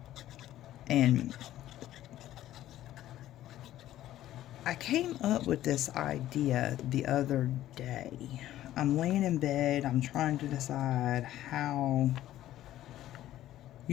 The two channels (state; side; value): quieter; right; 13.5 dB